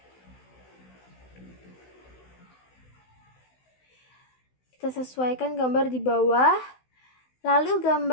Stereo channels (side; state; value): right; late; 16 ms